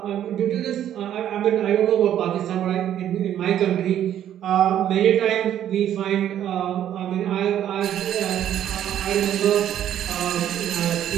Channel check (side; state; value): left; quieter; 10.9 dB